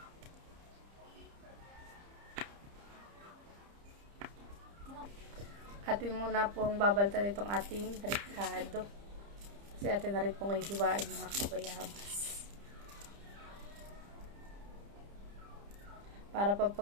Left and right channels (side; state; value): left; late; 30 ms